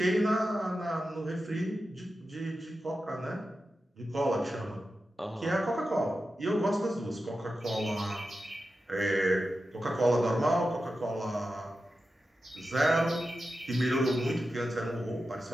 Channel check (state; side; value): normal; both; correlation 0.91